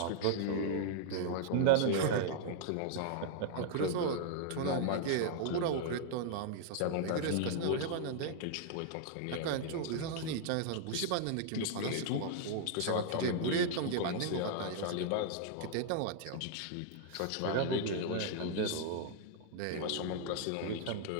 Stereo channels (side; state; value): both; different; correlation -0.01